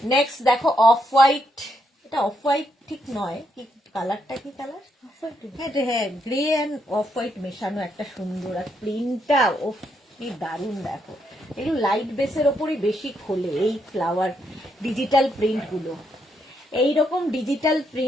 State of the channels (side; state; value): both; normal; correlation 0.78